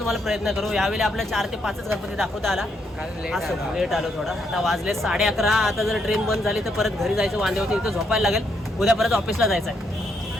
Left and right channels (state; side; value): normal; both; correlation 0.76